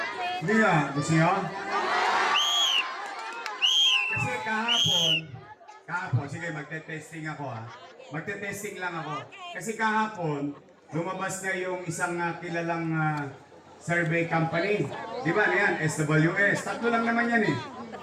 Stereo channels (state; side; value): identical; both; correlation 1.00